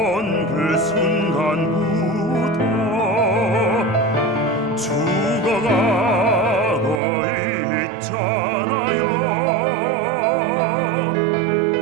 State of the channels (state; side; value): drops out; left; at 7.0 s